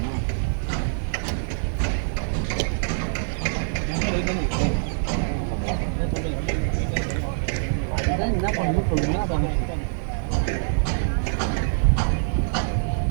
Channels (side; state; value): left; silent; 62 dB below the other